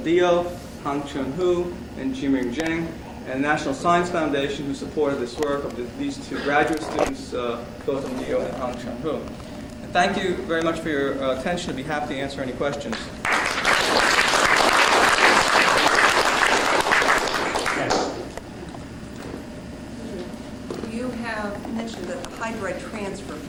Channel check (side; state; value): both; identical; correlation 1.00